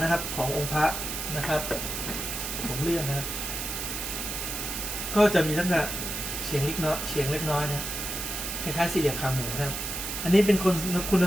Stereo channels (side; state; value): right; noise; hiss, 4 dB below the sound